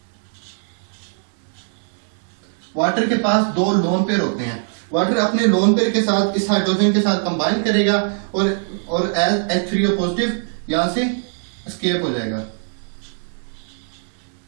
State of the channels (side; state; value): left; silent; digital silence